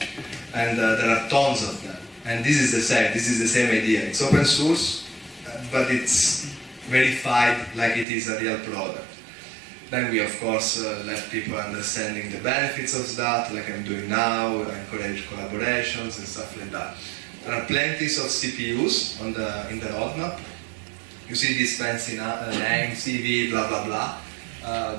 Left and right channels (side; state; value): left; drops out; at 8.1 s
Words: And there are tons of them. And this is the same. This is the same idea. It's open source, but it's verified like it is a real product. Then we, of course, let people understanding the benefits of that, like I'm doing now, encourage collaborations and stuff like that. There are plenty of CPUs in the roadmap. You see this fancy name, CV, blah, blah, blah.